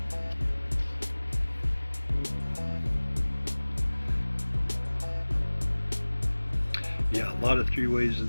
Yeah, a lot of three-ways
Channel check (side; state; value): both; inverted; correlation -1.00